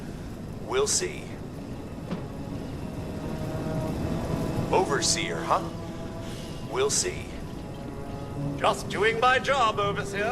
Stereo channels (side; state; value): both; identical; correlation 1.00